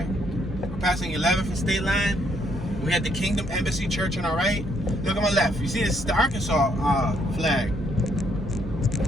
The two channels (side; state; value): both; normal; correlation 0.71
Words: We're passing 11th and State Line. We had the Kingdom Embassy Church on our right. Look on my left. You see this is the Arkansas flag.